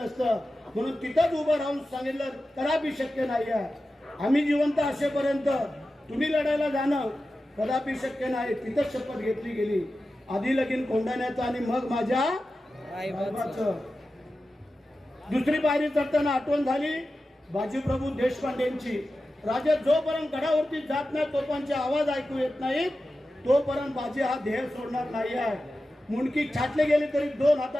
म्हणून तिथंच उभं राहून सांगितलं कदापि शक्य नाही आहे, आम्ही जिवंत असेपर्यंत तुम्ही लढायला जाणं कदापि शक्य नाही. तिथंच शपथ घेतली गेली, आधी लगीन कोंढाण्याचं आणि मग माझ्या रायबाचं. दुसरी पायरी चढताना आठवण झाली बाजीप्रभू देशपांडेंची. राजा जोपर्यंत गडावरती जात नाही, तोपर्यंत आवाज ऐकू येत नाहीत, तोपर्यंत बाजी हा ध्येय सोडणार नाही आहे. मुंडकी छाटले गेले तरी 2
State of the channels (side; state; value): both; normal; correlation 0.93